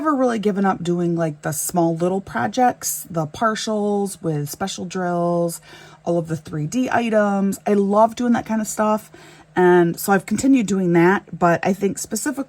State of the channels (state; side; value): identical; both; correlation 1.00